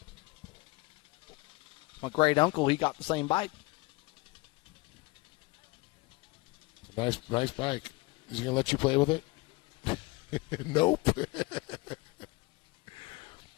My great uncle, he got the same bike. Nice bike. Is he going to let you play with it? Nope.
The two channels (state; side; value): quieter; right; 23.5 dB